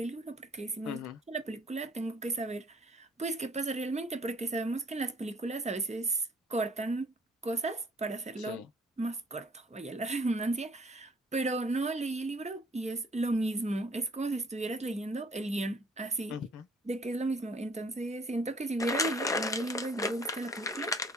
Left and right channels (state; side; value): normal; both; correlation 0.58